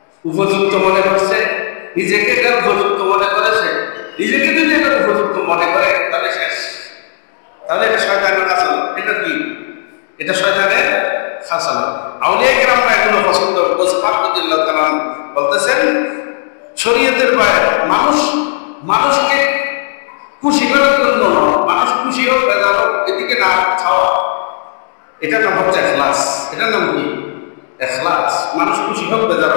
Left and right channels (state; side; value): silent; right; digital silence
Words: উপযুক্ত মনে করছে, নিজেকে এটা উপযুক্ত মনে করেছে, নিজেকে যদি এটা উপযুক্ত মনে করে তাহলে শেষ, তাহলে এটা শয়তানের খাসালা। এটা কি? এটা শয়তানের খাসালা। আউলিয়া কেরামরা এগুলো পছন্দ বলতেছেন শরীয়তের বাইরে মানুষকে খুশি করার জন্য, মানুষ খুশি হোক বেজার হোক এদিকে না খাওয়া, এটার নাম হচ্ছে ইখলাস। এটার নাম কি? ইখলাস। মানুষ খুশি হোক বেজার